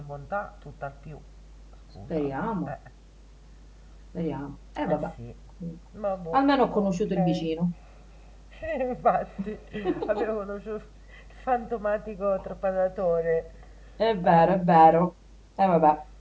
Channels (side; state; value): both; identical; correlation 1.00